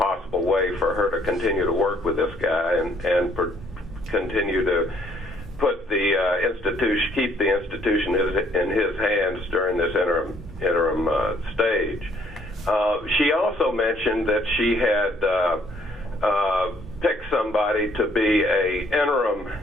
way for her to continue to work with this guy and continue to put the institution, keep the institution in his hands during this interim stage. She also mentioned that she had picked somebody to be a interim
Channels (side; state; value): both; normal; correlation 0.64